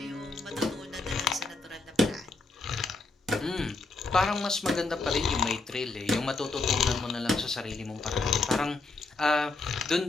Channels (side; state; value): right; quieter; 3.5 dB